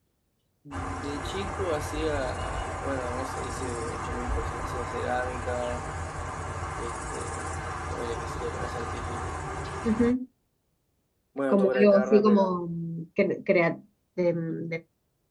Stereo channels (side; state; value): both; identical; correlation 1.00